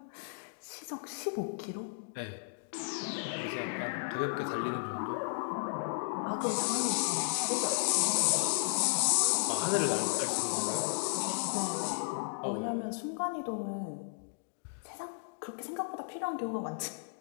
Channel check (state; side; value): silent; right; digital silence